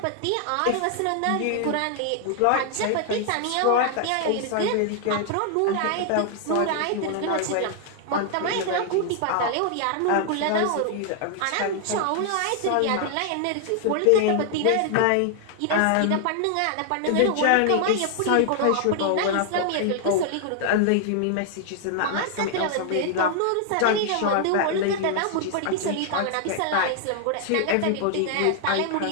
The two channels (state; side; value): different; both; correlation 0.00